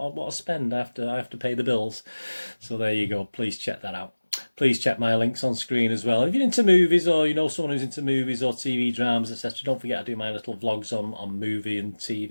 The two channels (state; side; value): inverted; both; correlation -1.00